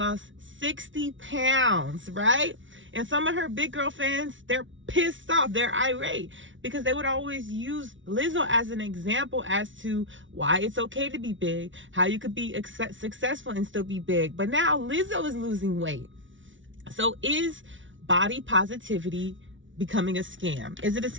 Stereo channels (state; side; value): late; left; 0.56 ms